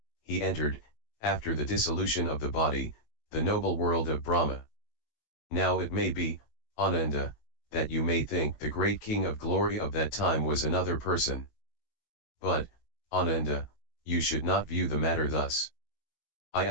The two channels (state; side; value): late; right; 18 ms